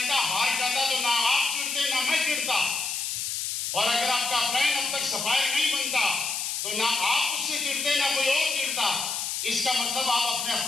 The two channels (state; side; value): noise; left; hiss, 2 dB below the sound